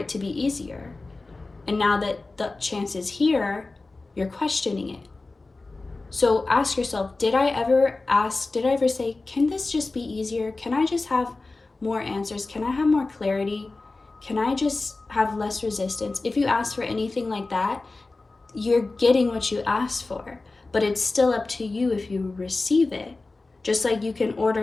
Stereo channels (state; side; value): quieter; right; 3.4 dB